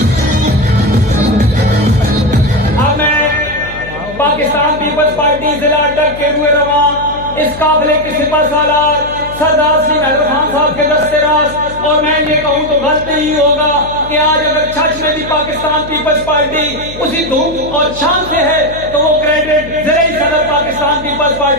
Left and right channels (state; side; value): noise; left; hum, 15 dB below the sound